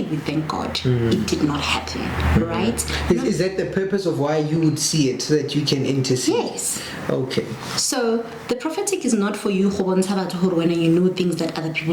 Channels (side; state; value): both; identical; correlation 1.00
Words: we thank God it did not happen, right? Is that the purpose of why you would see it, so that you can intercede? Yes. Okay. So the prophetic is not for you when you know things that other